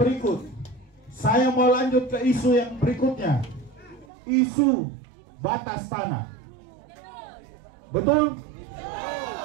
saya mau lanjut ke isu yang berikutnya. Isu batas tanah. Betul?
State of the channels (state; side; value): drops out; left; at 4.0 s